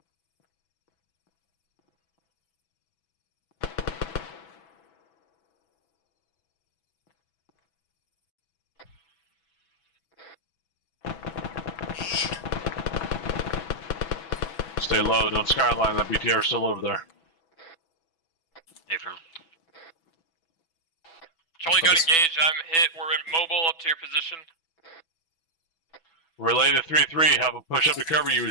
Stay low, don't skyline, that BTR is still over there. Affirm. Charlie got engaged, I'm hit, we're mobile up to your position. Relay to 3-3, have a push up to cover you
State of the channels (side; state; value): right; late; 6.1 ms